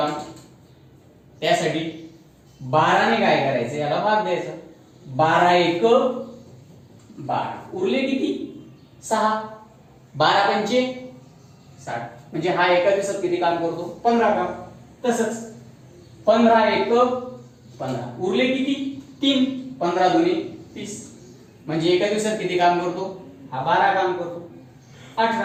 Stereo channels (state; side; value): identical; both; correlation 1.00